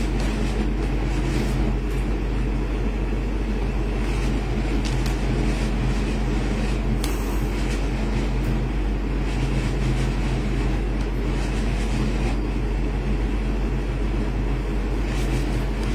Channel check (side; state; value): both; identical; correlation 1.00